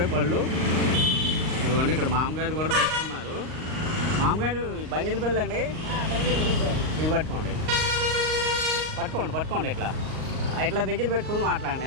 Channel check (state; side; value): late; left; 38 ms